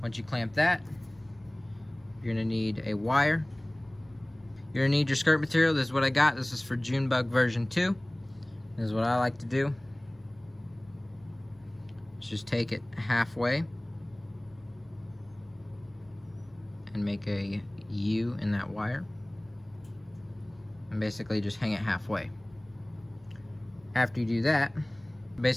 you clamp that, you're gonna need a wire. You're gonna need your skirt material. This is what I got. This is for Junebug version 2. This is what I like to do. Just take it halfway and make a U in that wire. And basically just hang it halfway. After you do that,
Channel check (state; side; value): noise; left; hum, 27 dB below the sound